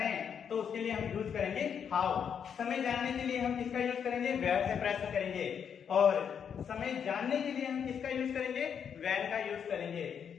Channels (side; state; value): right; quieter; 7.6 dB